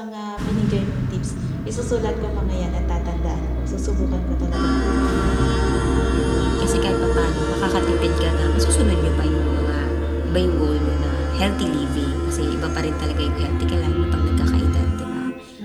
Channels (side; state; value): both; identical; correlation 1.00